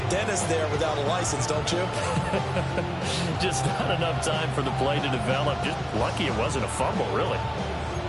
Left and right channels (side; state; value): both; identical; correlation 1.00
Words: dentist there without a license, don't you? Just not enough time for the play to develop. Just lucky it wasn't a fumble, really.